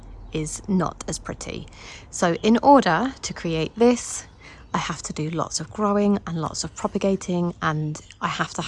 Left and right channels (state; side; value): identical; both; correlation 1.00